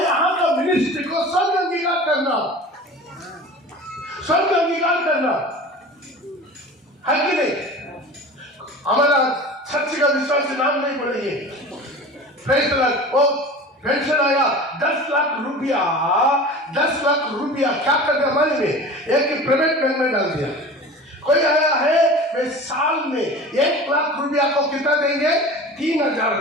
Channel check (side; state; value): both; normal; correlation 0.37